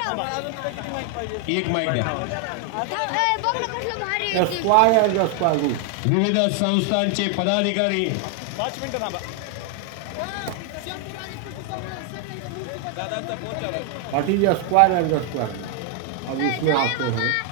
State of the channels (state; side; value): different; both; correlation 0.00